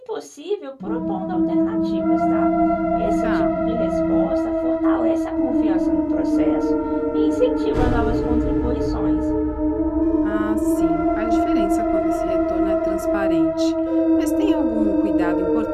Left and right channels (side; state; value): both; identical; correlation 1.00